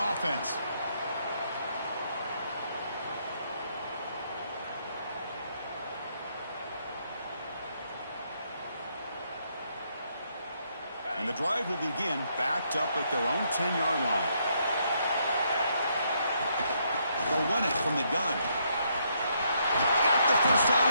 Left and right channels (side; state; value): both; inverted; correlation -0.74